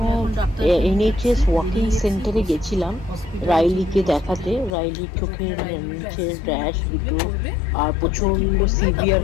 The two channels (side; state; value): right; drops out; at 4.8 s